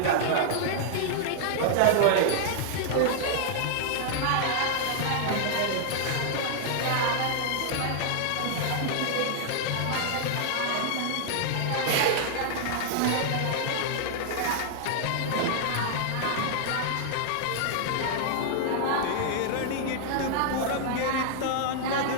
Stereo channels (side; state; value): both; different; correlation -0.01